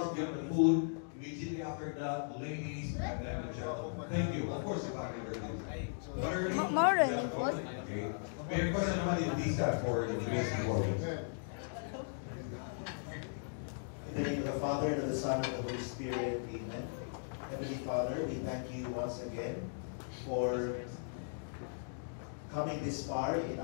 Get the food. Immediately after that, ladies and then the gentlemen. Thank you. Of course, if I can More than okay. May I first everybody please have for the today's performance. In the name of the Father, and of the Son, and of the Holy Spirit, amen. Heavenly Father, we thank you once again for coming this far in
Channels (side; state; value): right; silent; digital silence